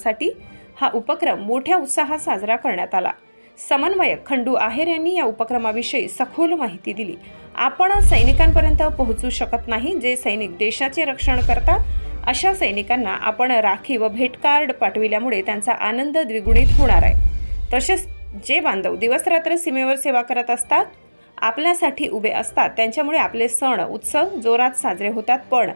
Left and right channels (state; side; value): inverted; both; correlation -1.00